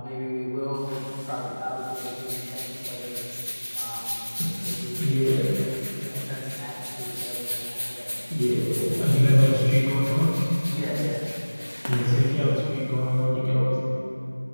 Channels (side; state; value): both; inverted; correlation -1.00